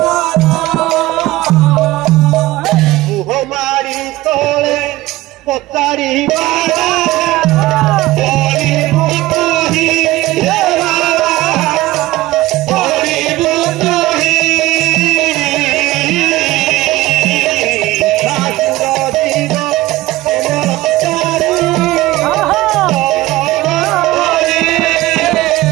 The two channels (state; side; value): quieter; left; 17.9 dB